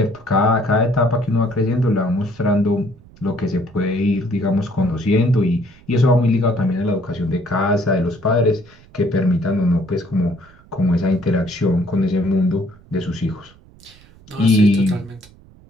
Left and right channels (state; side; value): noise; right; rumble, 25 dB below the sound